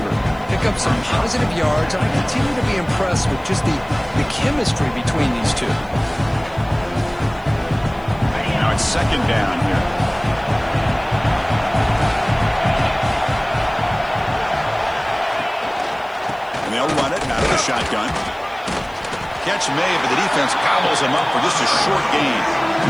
Pick up some positive yards, and I continue to be impressed with just the chemistry between these two. Now it's second down here. And they'll run it out of the shotgun. Catch made, but the defense gobbles him up for just a short gain.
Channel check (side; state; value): left; noise; hiss, 30 dB below the sound